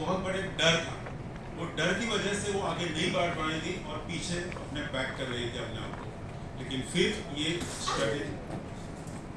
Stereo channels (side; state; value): both; identical; correlation 1.00